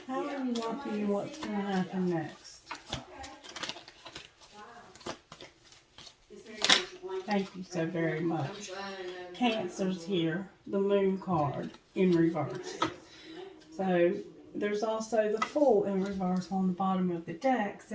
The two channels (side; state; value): both; identical; correlation 1.00